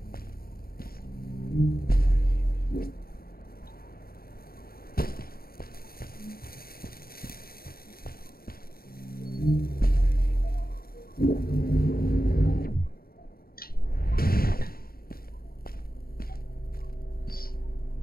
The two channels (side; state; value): right; late; 0.43 ms